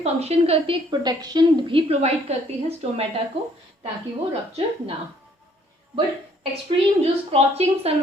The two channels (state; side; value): normal; both; correlation 0.63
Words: फंक्शन करती है, एक प्रोटेक्शन भी प्रोवाइड करती है स्टोमेटा को ताकि वो रप्चर ना हो। बट एक्सट्रीम जो स्क्रॉचिंग